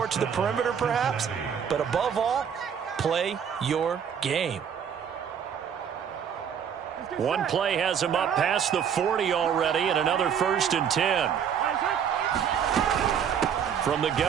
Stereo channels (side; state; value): left; quieter; 8.0 dB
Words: to the perimeter perhaps, but above all, play your game. One play has him up past the 40 already, and another 1st and 10. From the